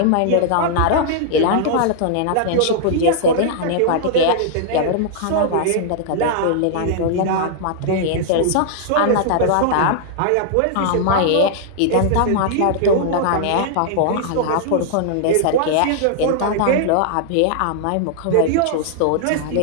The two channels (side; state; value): both; different; correlation -0.01